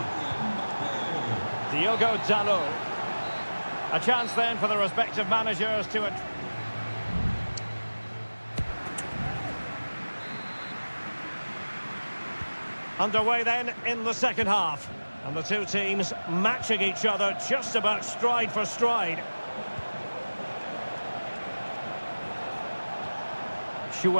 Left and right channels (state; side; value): inverted; both; correlation -1.00